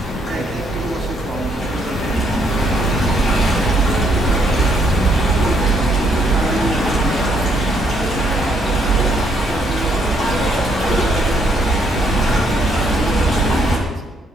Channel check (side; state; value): both; normal; correlation 0.71